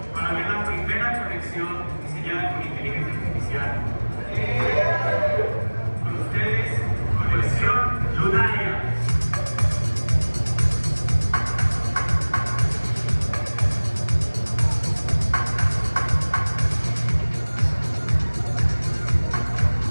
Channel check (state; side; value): inverted; both; correlation -1.00